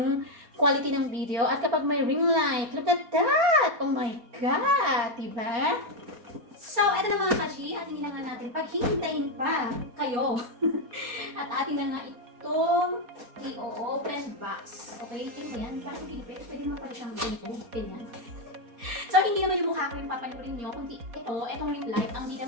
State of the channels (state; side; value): late; left; 4.2 ms